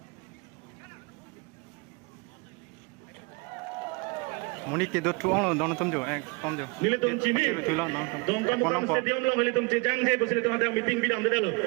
Muni ke dot tuang don tum jo tom jo nilitum chimi tulang nang dong kam kam stadium long nilitum chejang je bosile tum ada meeting bidam de dalo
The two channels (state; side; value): quieter; left; 28.2 dB